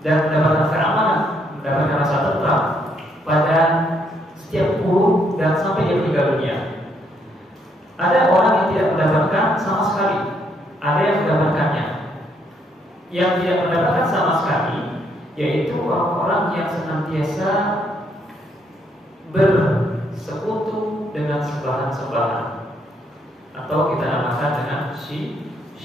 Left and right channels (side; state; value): both; normal; correlation 0.72